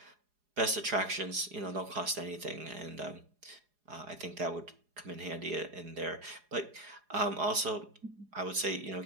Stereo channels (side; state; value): left; late; 4.8 ms